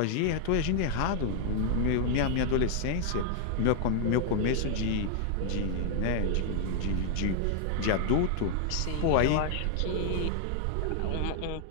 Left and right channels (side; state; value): both; different; correlation 0.00